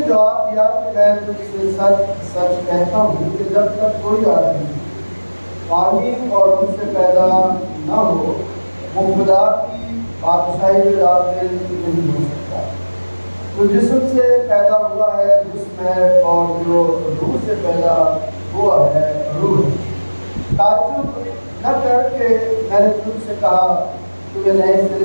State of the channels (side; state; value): both; inverted; correlation -1.00